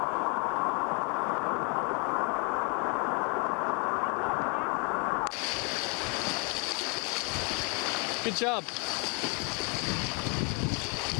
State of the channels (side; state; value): right; quieter; 32.5 dB